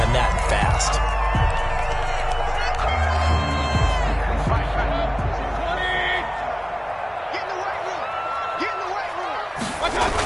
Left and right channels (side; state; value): both; identical; correlation 1.00